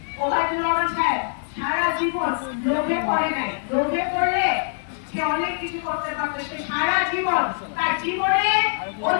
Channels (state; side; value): silent; right; digital silence